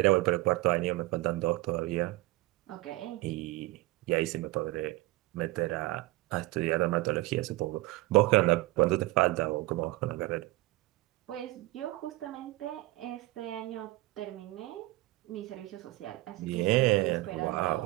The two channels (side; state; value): left; quieter; 19.7 dB